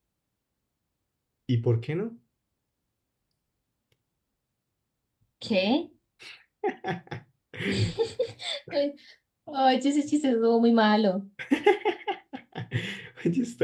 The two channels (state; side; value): identical; both; correlation 1.00